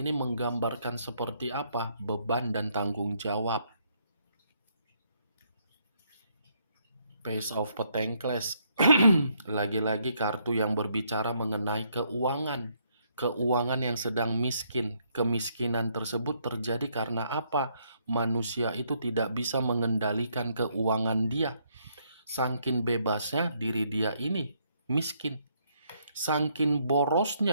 menggambarkan seperti apa? Beban dan tanggung jawab. Page of Pentacles. Lagi-lagi kartu yang berbicara mengenai keuangan. Keuangan yang sedang miskin. Kemiskinan tersebut terjadi karena apa? Manusia itu tidak bisa mengendalikan keuangan dia. Saking bebasnya diri dia ini miskin. Saking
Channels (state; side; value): inverted; both; correlation -0.72